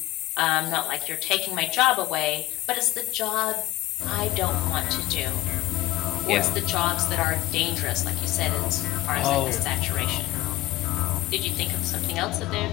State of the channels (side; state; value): right; quieter; 17.5 dB